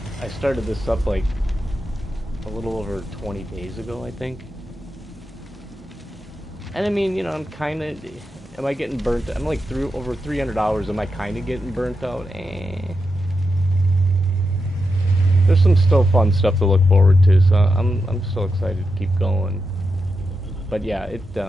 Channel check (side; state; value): both; normal; correlation 0.87